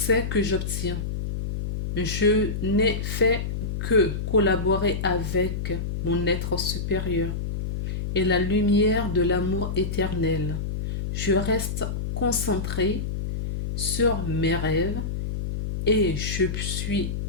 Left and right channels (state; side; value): noise; left; hum, 3 dB below the sound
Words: que j'obtiens. Je n'ai fait que collaborer avec mon être supérieur et la lumière de l'amour éternel. Je reste concentré sur mes rêves et je suis